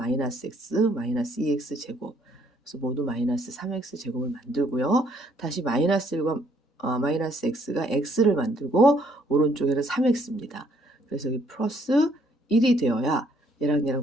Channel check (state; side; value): normal; both; correlation 0.66